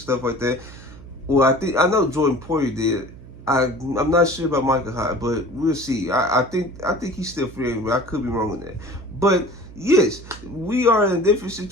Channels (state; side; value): noise; right; hum, 17 dB below the sound